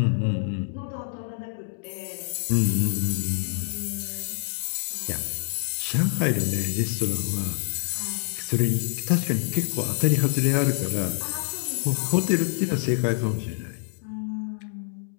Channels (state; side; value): silent; right; digital silence